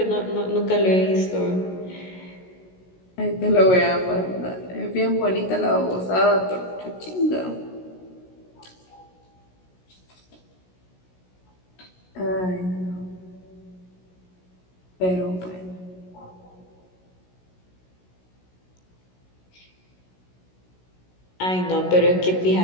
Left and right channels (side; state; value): right; late; 16 ms